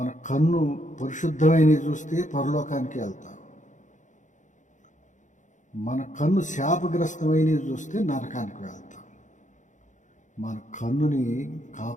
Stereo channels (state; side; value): late; right; 0.36 ms